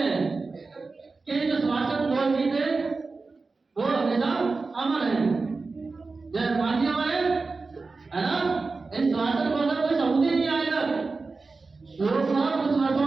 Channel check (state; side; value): quieter; left; 4.0 dB